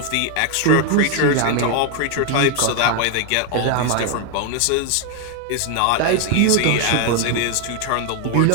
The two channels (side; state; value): both; different; correlation 0.01